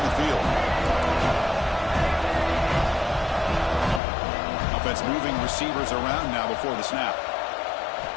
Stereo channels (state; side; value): drops out; right; at 4.0 s